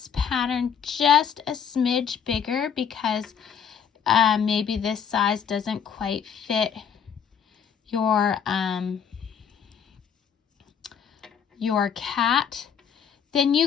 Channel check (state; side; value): quieter; right; 7.6 dB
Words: pattern just a smidge bigger, because maybe this size doesn't quite fit your cat, then